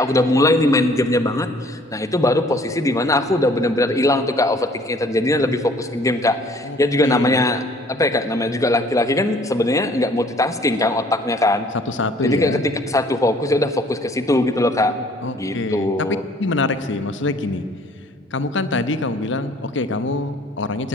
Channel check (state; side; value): normal; both; correlation 0.56